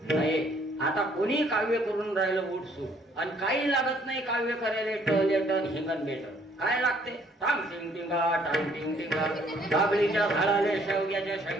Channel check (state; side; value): normal; both; correlation 0.63